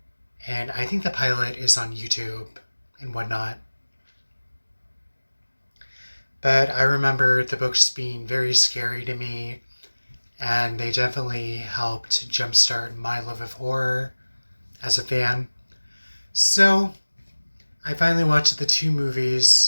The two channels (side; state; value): both; inverted; correlation -1.00